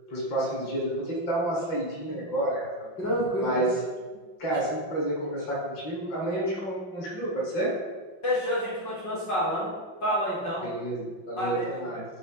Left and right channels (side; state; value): right; late; 5.5 ms